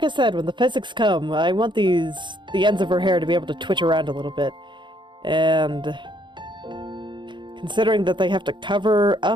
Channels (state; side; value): late; left; 0.23 ms